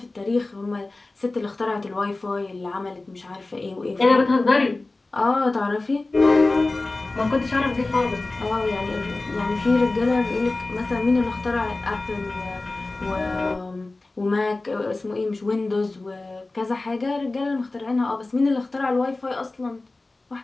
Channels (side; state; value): right; quieter; 3.2 dB